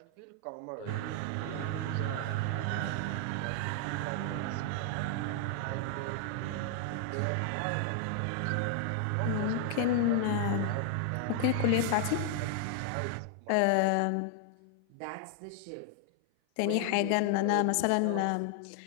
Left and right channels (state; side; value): different; both; correlation 0.00